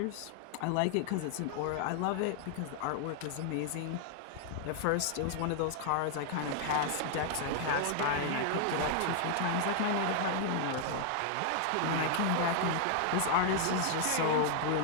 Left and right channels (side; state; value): both; different; correlation 0.00